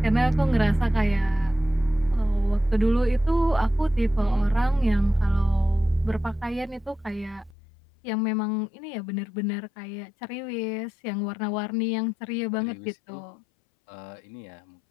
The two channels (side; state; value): right; drops out; at 7.6 s